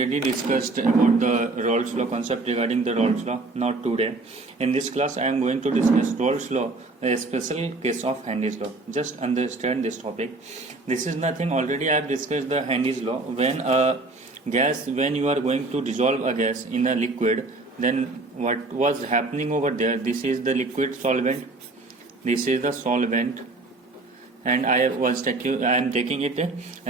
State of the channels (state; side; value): quieter; left; 3.3 dB